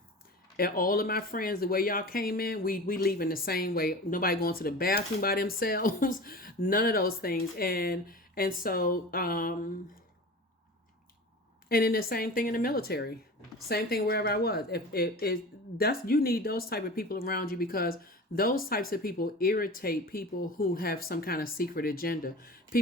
all of my friends, the way y'all came in, we leaving the same way. Nobody going to the bathroom by themselves, none of those things. And so, and then the same thing in the military, same thing wherever I was. If that's, you need those type of people around you, because those types of people irritate people who have some kind of secret agenda,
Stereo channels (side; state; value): both; normal; correlation 0.34